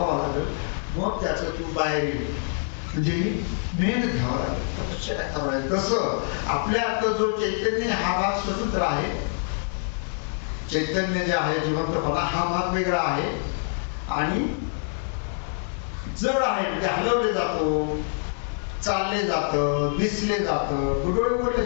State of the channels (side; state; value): right; silent; 60 dB below the other